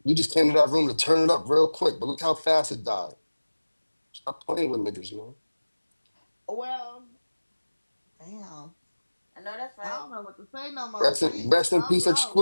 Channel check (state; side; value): inverted; both; correlation -1.00